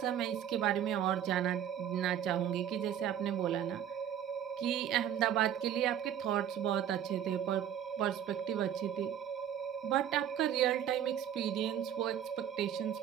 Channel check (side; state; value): left; quieter; 10.0 dB